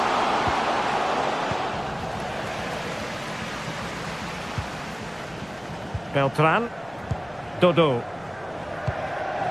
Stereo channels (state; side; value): noise; left; rumble, 25 dB below the sound